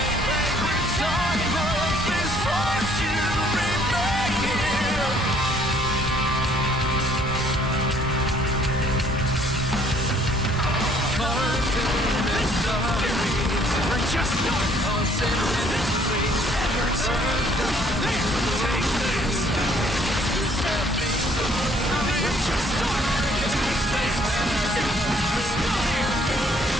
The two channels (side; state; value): both; normal; correlation 0.61